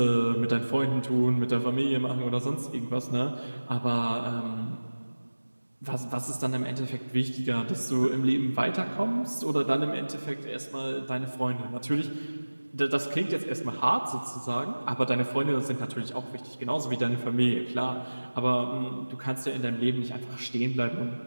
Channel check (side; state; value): both; inverted; correlation -1.00